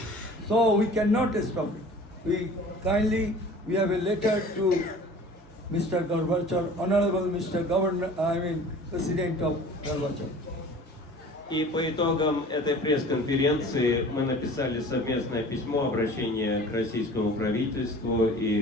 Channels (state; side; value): normal; both; correlation 0.44